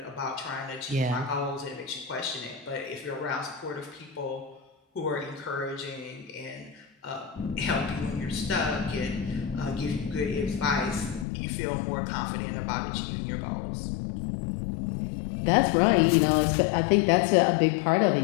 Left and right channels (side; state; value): right; drops out; at 11.2 s